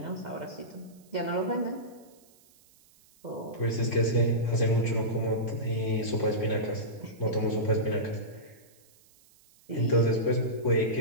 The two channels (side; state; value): right; noise; hiss, 29 dB below the sound